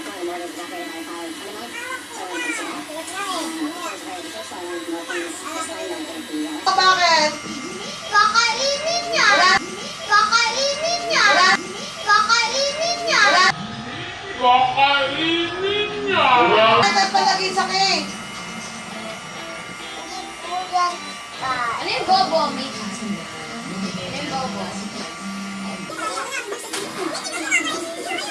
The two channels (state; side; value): identical; both; correlation 1.00